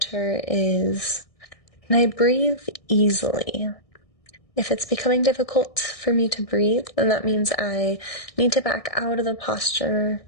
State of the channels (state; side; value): late; right; 1.6 ms